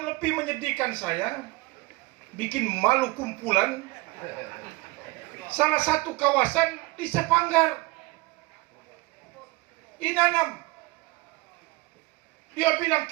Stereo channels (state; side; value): quieter; left; 22.8 dB